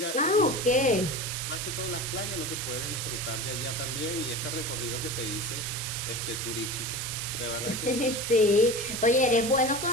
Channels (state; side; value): noise; right; hiss, 3 dB below the sound